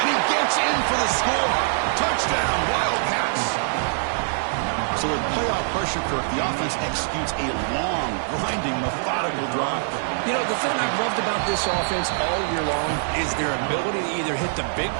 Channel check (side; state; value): left; silent; 63 dB below the other